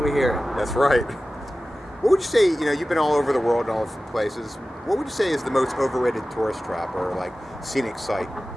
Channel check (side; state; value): both; normal; correlation 0.96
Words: we hear it. That's right. What would you say, you know, you've been all over the world and all different places. What would you say is the most overrated tourist trap or like scenic site?